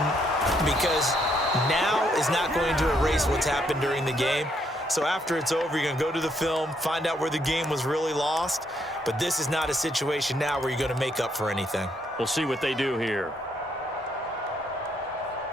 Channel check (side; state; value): both; normal; correlation 0.73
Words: because now is not going to erase what's happened during the game. So after it's over, you're going to go to the film, find out where the game was really lost. But this is not a situation now where you're going to make up for anything. We'll see what they do here.